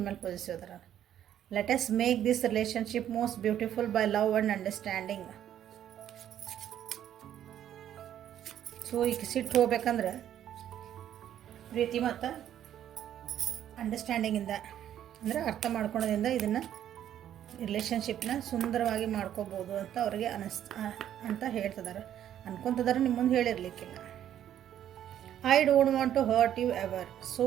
ಮೇಲೆ ಪಾಸಿಟಿವ್ ಅದಾರ. Let us make this relationship most beautiful by love and understanding. So ಈಗ ಸಿಟ್ಟು ಹೋಗ್ಬೇಕಂದ್ರೆ ಪ್ರೀತಿ ಮತ್ತು ಅಂಡರ್ಸ್ಟ್ಯಾಂಡಿಂಗಿಂದ, ಅಂದರೆ ಅರ್ಥ ಮಾಡ್ಕೊಳೋದ್ರಿಂದ ಇದನ್ನು ರಿಲೇಷನ್ಶಿಪ್ನ ಸುಂದರವಾಗಿ ಮಾಡ್ಕೋಬೋದು ಅಂತ ಅವ್ರಿಗೆ ಅಂತ ಹೇಳ್ತಿದ್ದಾರೆ, ಅನ್ಕೊತಿದ್ದಾರೆ. ನಿಮ್ಮ ಮುಂದೆ ಹೇಳಿರ್ಲಿಕ್ಕಿಲ್ಲ. I don't want to hurt you ever, so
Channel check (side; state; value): left; quieter; 10.8 dB